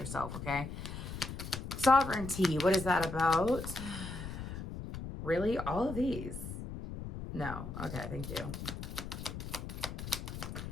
okay? Sovereignty, what is that about? Really? All of these? No. Okay, thank you.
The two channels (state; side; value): noise; left; rumble, 7 dB below the sound